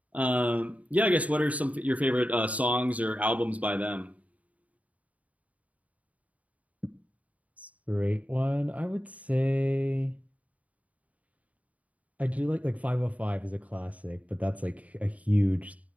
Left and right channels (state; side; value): late; left; 0.069 ms